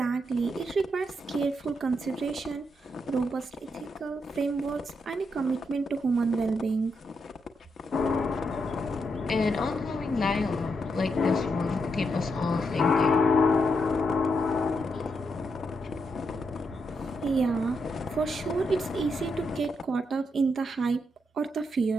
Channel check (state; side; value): normal; both; correlation 0.81